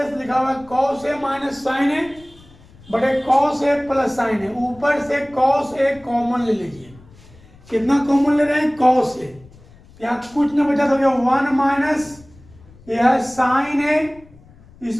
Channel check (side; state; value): left; noise; rumble, 24 dB below the sound